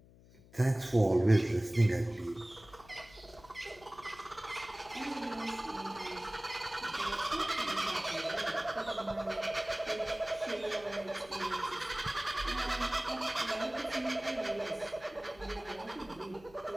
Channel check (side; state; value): left; noise; hum, 23 dB below the sound